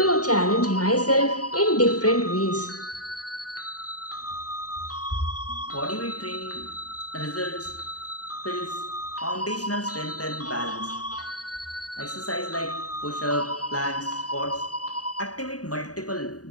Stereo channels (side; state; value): right; late; 0.68 ms